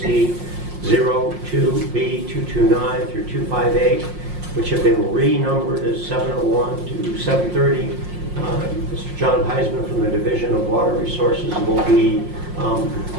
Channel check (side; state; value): left; late; 5.6 ms